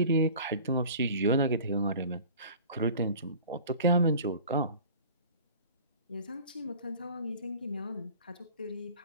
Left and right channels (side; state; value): both; inverted; correlation -0.43